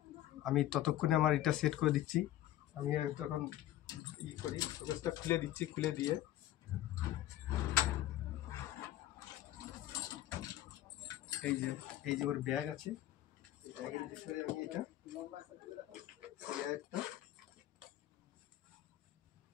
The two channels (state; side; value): quieter; right; 13.8 dB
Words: আমি ততক্ষণে আমার এটা সেট করে দিচ্ছি। আমি তখন করি ফোকাসটা খুলে দিচ্ছি, খুলে দিয়ে এই যে ওর ব্যাগ আছে, ব্যাগের ভিতরে আমি এটা